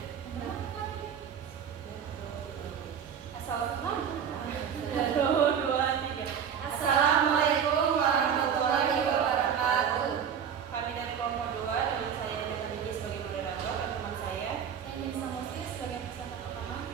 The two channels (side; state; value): left; quieter; 7.9 dB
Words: warahmatullahi wabarakatuh. Kami dari kelompok 2 dengan saya Dina Biji sebagai moderator dan teman saya Nisa Musli sebagai presenter pertama,